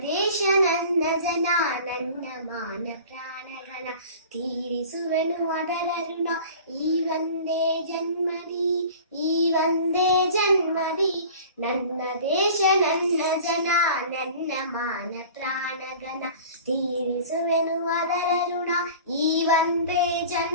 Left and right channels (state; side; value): inverted; both; correlation -0.42